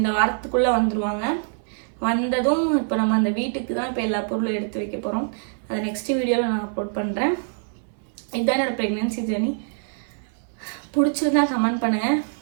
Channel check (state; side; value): silent; left; 62 dB below the other